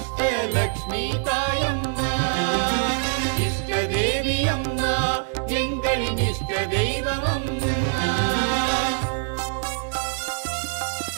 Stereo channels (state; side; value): silent; left; digital silence